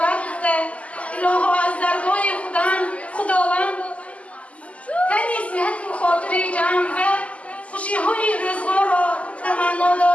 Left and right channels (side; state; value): right; late; 0.066 ms